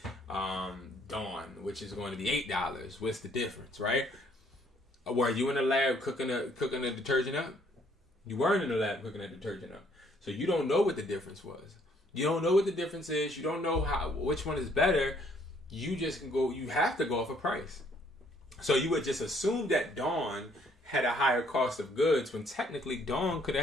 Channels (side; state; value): both; normal; correlation 0.65